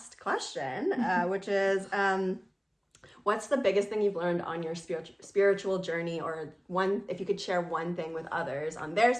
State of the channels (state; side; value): identical; both; correlation 1.00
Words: question, which is, what's the biggest thing you've learned on your spiritual journey, or if you could share one thing with others on their